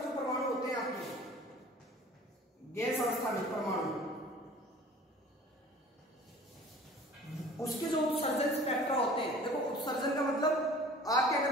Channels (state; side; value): normal; both; correlation 0.46